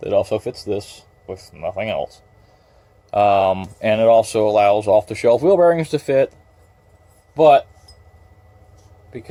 also fits this with nothing else. And it also allows off-the-shelf wheel bearings to fit, but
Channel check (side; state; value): both; identical; correlation 1.00